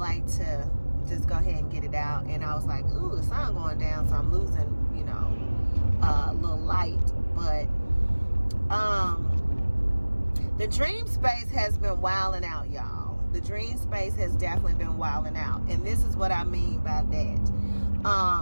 to just go ahead and get it out. And I was like, ooh, the sun going down, so I'm losing, a little light. But the dream space has been wilding out, y'all. The dream space has definitely been wilding out. And this is what I mean by that.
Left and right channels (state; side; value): inverted; both; correlation -1.00